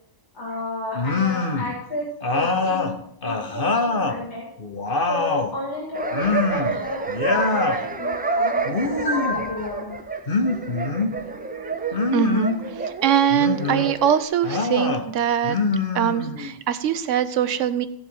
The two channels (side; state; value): right; late; 1.0 ms